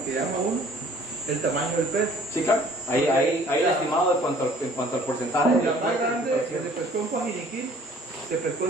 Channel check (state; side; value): normal; both; correlation 0.53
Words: que llama uno, el tamaño del pez. Sí, claro. Ahí estimado en cuanto al porcentaje. La más grande que se pescó en Coajiniquí, se pescó